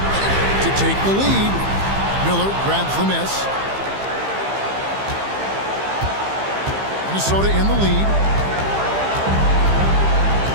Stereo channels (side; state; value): left; late; 15 ms